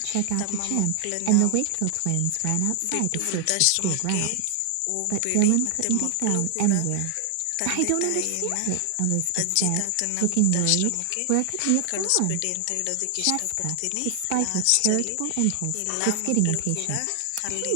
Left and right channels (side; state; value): both; different; correlation 0.00